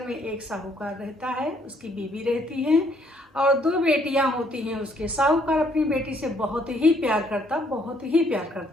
में एक साहूकार रहता है, उसकी बीवी रहती है और दो बेटियां होती हैं उसके। साहूकार अपनी बेटी से बहुत ही प्यार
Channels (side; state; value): both; normal; correlation 0.67